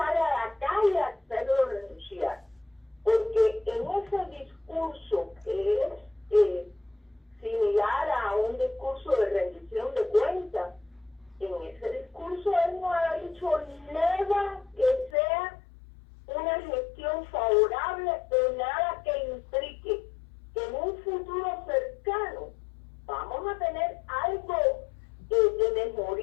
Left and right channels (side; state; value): right; drops out; at 15.1 s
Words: a la calle a hacerlo renunciar. Porque en ese discurso que es similar a un discurso de rendición de cuentas, en ese discurso él no ha dicho nada que sea una gestión favorable o nada que implique que en un futuro cercano vamos a tener algo de